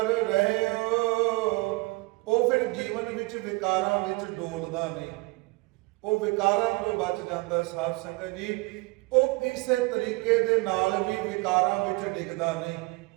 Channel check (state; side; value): quieter; left; 25.0 dB